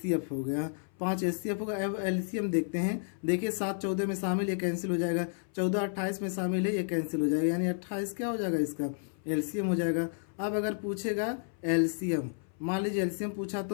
हो गया, 5 एचसीएफ होगा। अब एलसीएम देखते हैं। देखिए 7 14 में शामिल, ये कैंसिल हो जाएगा। 14 28 में शामिल है, ये कैंसिल हो जाएगा, यानी 28 क्या हो जाएगा, इसका एलसीएम हो जाएगा। अब अगर पूछेगा एलसीएम, मान लीजिए एलसीएम पूछा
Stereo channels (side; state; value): right; silent; 57 dB below the other